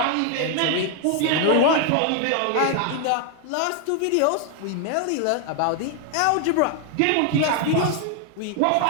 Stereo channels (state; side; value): different; both; correlation 0.00